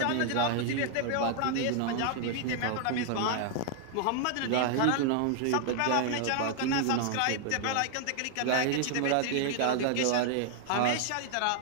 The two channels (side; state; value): both; different; correlation 0.00